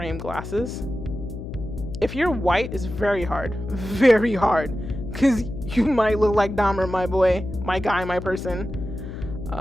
glasses. If you're white, it's very hard, because you might look like Dahmer, my boy, my guy, my person.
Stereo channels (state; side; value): noise; left; hum, 9 dB below the sound